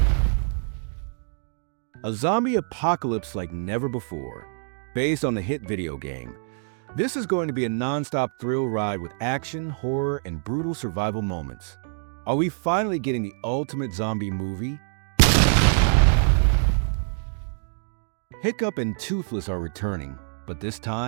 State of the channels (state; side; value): silent; left; digital silence